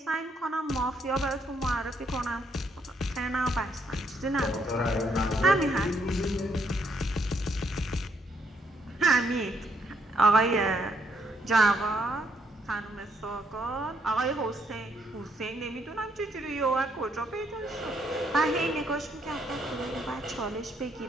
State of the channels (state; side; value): normal; both; correlation 0.72